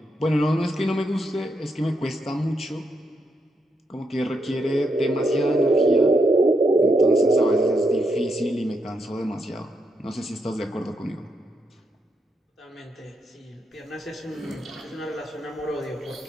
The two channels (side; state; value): both; normal; correlation 0.80